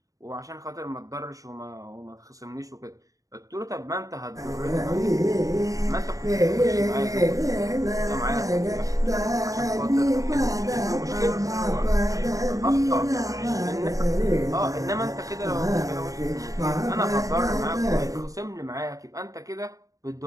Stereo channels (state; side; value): late; left; 0.16 ms